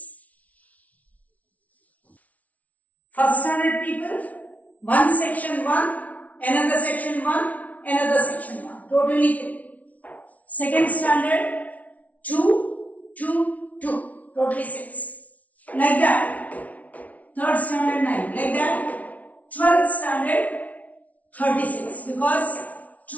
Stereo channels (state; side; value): late; right; 0.070 ms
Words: First standard people, one section 1, another section 1, another section 1. Totally 3. Second standard 2, 2, 2. Totally 6. Like that. Third standard 9. Like that. 12th standard 36. Because